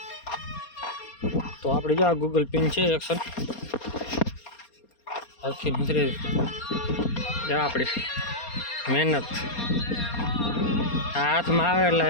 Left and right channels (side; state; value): right; late; 4.3 ms